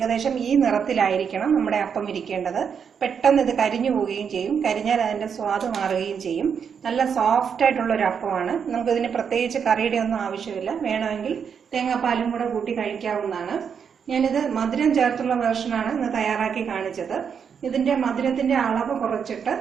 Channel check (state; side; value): quieter; left; 7.0 dB